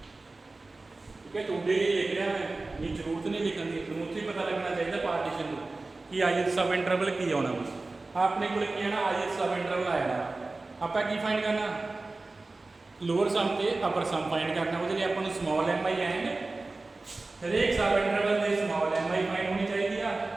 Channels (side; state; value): left; quieter; 3.3 dB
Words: ठीक है। टूडे ही लिख रहा मैं ये जरूरत नहीं लिखने की जरूरत ही पता लगना चाहिए पार्टीशन को कि ith सब इंटरवल की आना आपने को की आना ith सब इंटरवल आया ਆਪਾਂ ਕੀ ਫਾਈਂਡ ਕਰਨਾ, ਲੋਅਰ ਸਮ ਤੇ ਅਪਰ ਸਮ ਫਾਈਂਡ ਕਰਨਾ। ਉਹਦੇ ਲਈ ਆਪਾਂ ਨੂੰ ਸਮਾਲ ਐਮ ਆਈ ਐਂਡ ਹਰੇਕ ਸਬ ਇੰਟਰਵਲ ਦੇ ਸਮਾਲ ਐਮ ਆਈ ਫਾਈਂਡ ਹੋਣੀ ਚਾਹੀਦੀ ਆ।